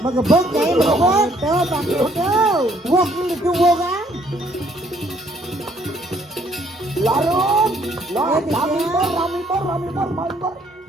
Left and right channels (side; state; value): both; normal; correlation 0.64